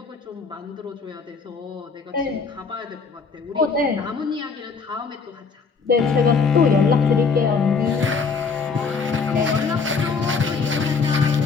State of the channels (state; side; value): quieter; right; 5.0 dB